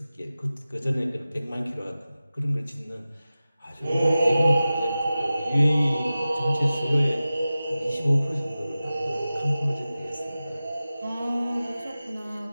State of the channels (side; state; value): both; inverted; correlation -0.95